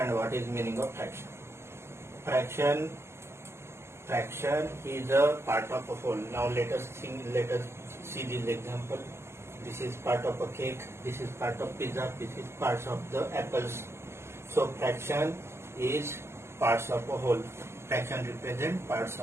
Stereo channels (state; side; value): late; left; 0.13 ms